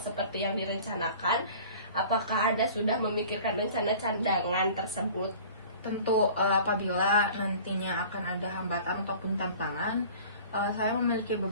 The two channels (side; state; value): both; inverted; correlation -0.45